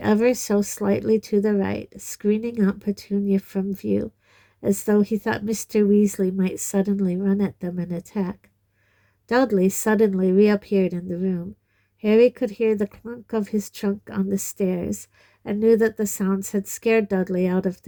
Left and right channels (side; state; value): both; identical; correlation 1.00